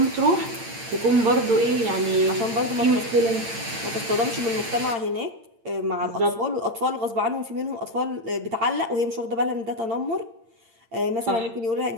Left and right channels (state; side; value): late; left; 8.8 ms